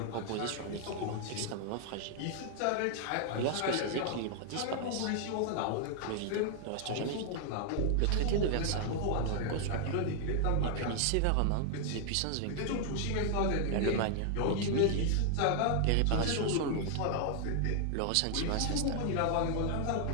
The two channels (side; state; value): both; different; correlation 0.00